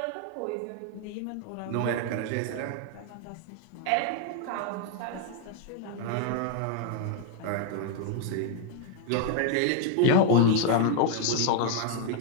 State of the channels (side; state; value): both; different; correlation 0.01